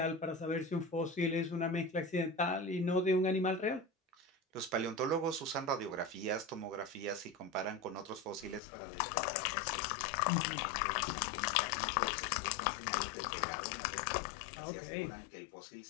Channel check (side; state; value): right; drops out; at 8.6 s